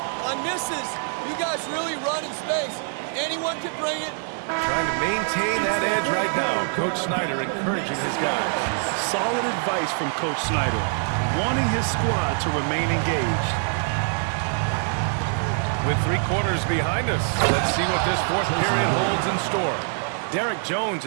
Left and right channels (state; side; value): silent; left; 62 dB below the other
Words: On misses, you guys really run in space. Anyone can bring it. Trying to maintain that edge right now. Coach Snyder encouraging his guys. Solid advice from Coach Snyder, wanting his squad to remain engaged. With 3 quarters behind us, let's see what this fourth period holds in store. Derek Jones